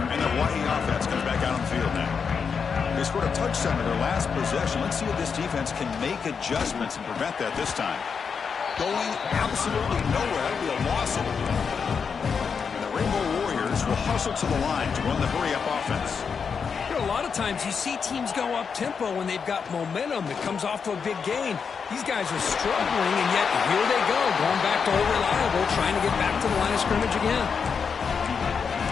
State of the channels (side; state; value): right; quieter; 6.1 dB